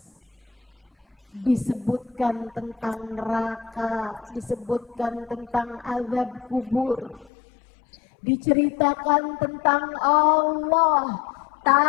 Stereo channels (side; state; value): right; drops out; at 7.3 s